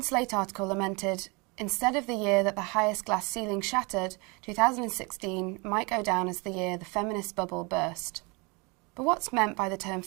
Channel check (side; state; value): left; quieter; 29.1 dB